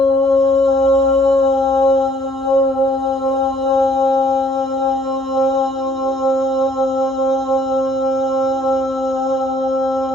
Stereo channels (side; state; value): both; normal; correlation 0.62